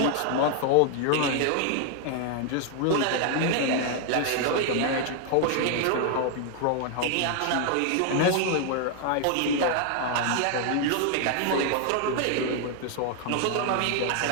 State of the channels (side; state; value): both; different; correlation 0.00